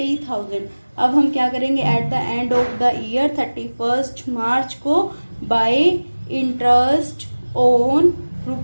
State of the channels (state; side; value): inverted; both; correlation -1.00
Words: अब हम क्या करेंगे, eight the end of the year 31 मार्च को bye interest on